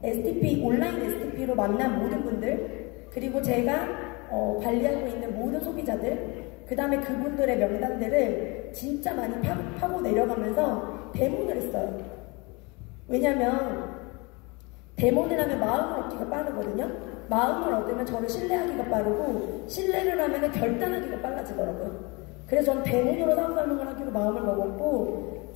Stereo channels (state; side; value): quieter; right; 27.5 dB